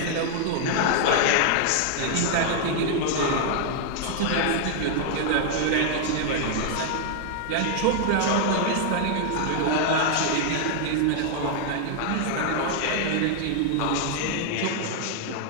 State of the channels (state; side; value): different; both; correlation 0.00